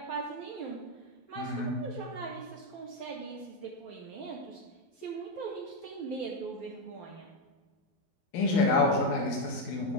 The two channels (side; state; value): right; late; 12 ms